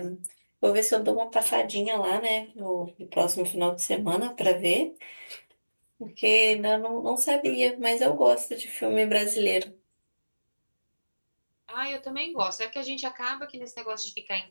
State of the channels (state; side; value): inverted; both; correlation -1.00